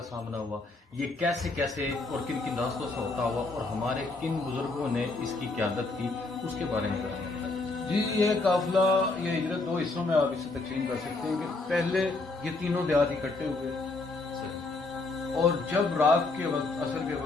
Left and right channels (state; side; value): quieter; right; 3.4 dB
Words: سامنا ہوا، یہ کیسے کیسے اور کن کن راستوں سے ہوتا ہوا، اور ہمارے کن بزرگوں نے اس کی قیادت کی، اس کے بارے میں بتائیں. جی، یہ قافلہ، یہ ہجرت 2 حصوں میں آپ اسے تقسیم کر سکتے ہیں کہ پہلے یہ تینوں دیہات اکٹھے ہوئے، اور جب رات کے وقت، عصر کے